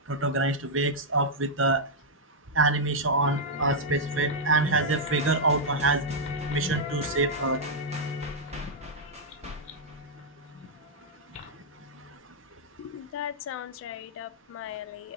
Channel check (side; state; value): both; normal; correlation -0.06